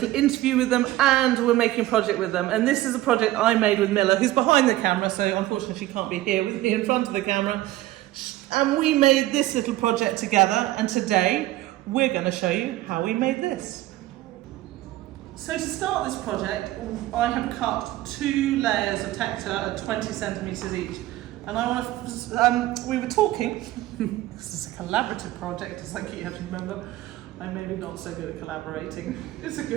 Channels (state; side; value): quieter; left; 15.9 dB